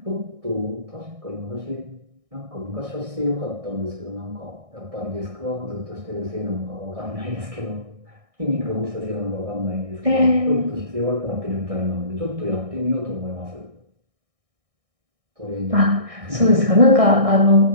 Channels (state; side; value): late; left; 1.6 ms